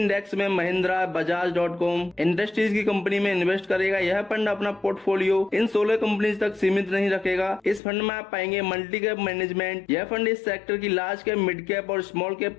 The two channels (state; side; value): drops out; right; at 7.8 s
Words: में महिंद्रा, बजाज.com इंडस्ट्रीज की कंपनी में इन्वेस्ट करेगा। यह फंड अपना पोर्टफोलियो इन 16 कंपनीज तक सीमित नहीं रखेगा। इस फंड में आप पाएंगे मल्टी कैप मैनेजमेंट। यह फंड इस सेक्टर की लार्ज कैप, मिड कैप और स्मॉल